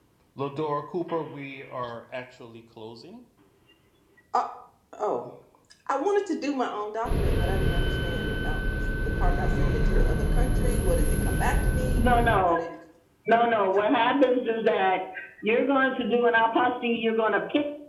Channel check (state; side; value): identical; both; correlation 1.00